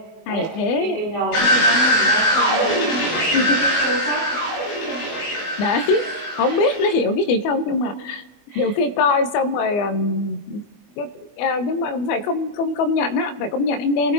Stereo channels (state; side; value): late; right; 24 ms